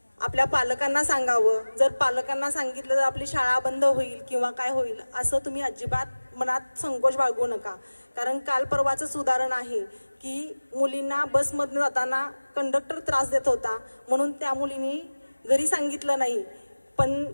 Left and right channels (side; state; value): both; inverted; correlation -1.00